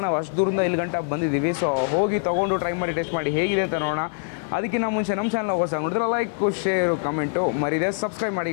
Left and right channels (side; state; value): right; silent; digital silence